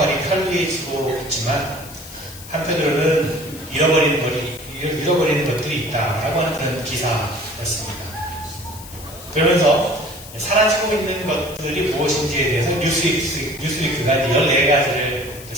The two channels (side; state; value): left; noise; hiss, 16 dB below the sound